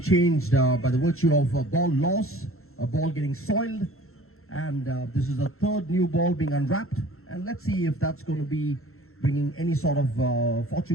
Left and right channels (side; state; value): right; late; 0.62 ms